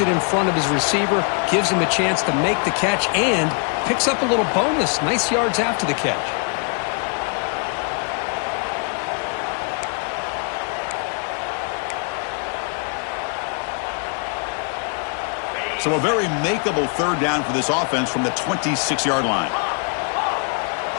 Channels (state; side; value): quieter; right; 39.2 dB